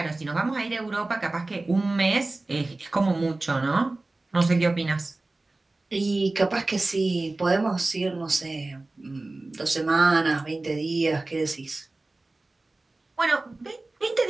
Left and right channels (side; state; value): left; quieter; 3.1 dB